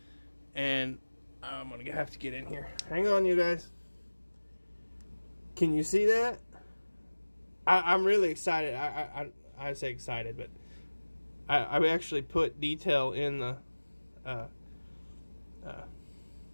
And I'm going to have to get in here. Hang on, you guys. Can you see that? I'm really excited. I say excited, but I actually put detail in the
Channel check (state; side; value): inverted; both; correlation -1.00